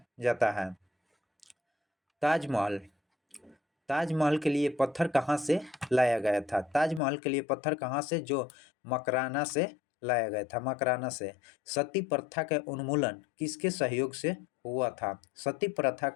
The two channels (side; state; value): right; drops out; at 7.0 s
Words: जाता है। ताजमहल के लिए पत्थर कहाँ से लाया गया था? ताजमहल के लिए पत्थर कहाँ से? जो मकराना से लाया गया था, मकराना से। सती प्रथा का उन्मूलन किसके सहयोग से हुआ था? सती प्रथा